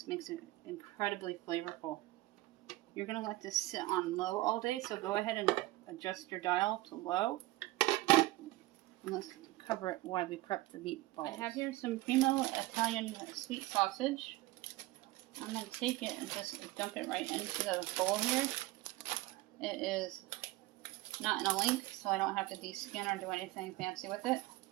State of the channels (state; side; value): quieter; left; 18.9 dB